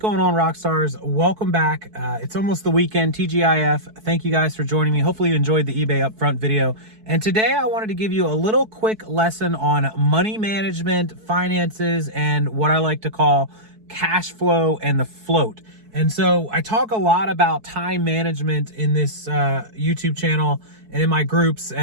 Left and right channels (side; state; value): left; late; 4.6 ms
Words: on, Rockstars? Welcome back. It's almost the weekend, TGIF. Thank you guys for joining me. Hopefully you enjoyed the eBay upfront video. And today I wanted to give you a little quick lesson on money management, finances, and what I like to call cash flow and the float. And so I talk a lot about time management in this YouTube channel and in my groups.